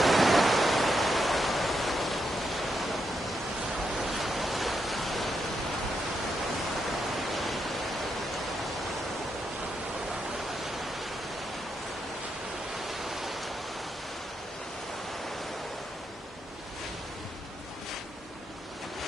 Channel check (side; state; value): both; normal; correlation 0.82